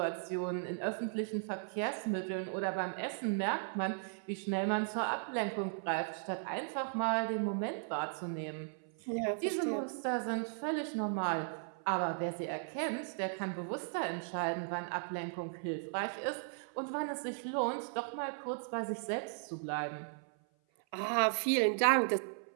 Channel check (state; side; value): silent; left; 53 dB below the other